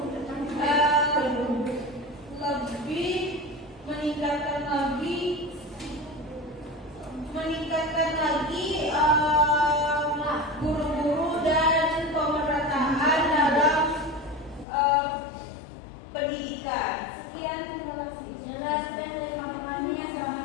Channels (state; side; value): drops out; right; at 14.7 s